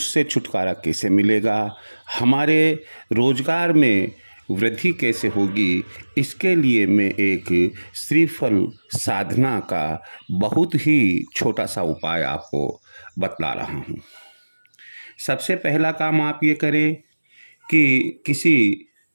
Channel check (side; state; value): both; inverted; correlation -1.00